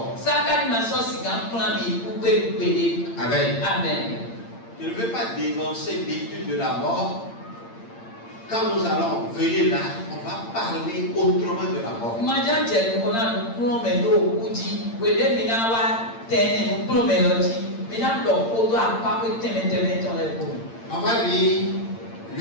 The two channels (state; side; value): late; right; 8.8 ms